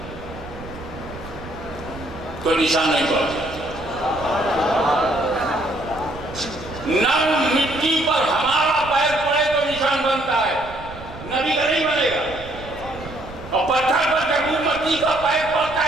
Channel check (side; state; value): right; noise; rumble, 15 dB below the sound